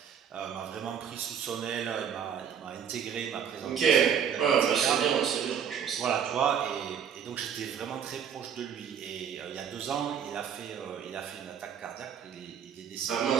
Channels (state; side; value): quieter; left; 7.9 dB